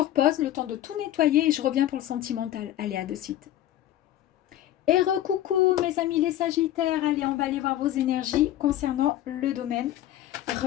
pause le temps de tout nettoyer et je reviens pour le sentimental. Allez, à de suite. Et recoucou, mes amis les Sagittaires. Allez, on va aller voir vos énergies concernant le domaine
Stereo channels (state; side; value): quieter; right; 13.0 dB